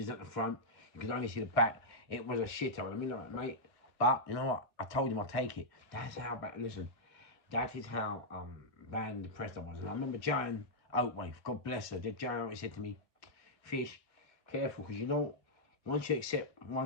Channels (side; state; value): right; late; 2.1 ms